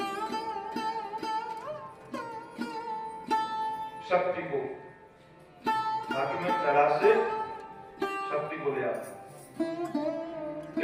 शक्ति को बाकी में कैलाश से शक्ति को ले आता,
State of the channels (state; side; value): identical; both; correlation 1.00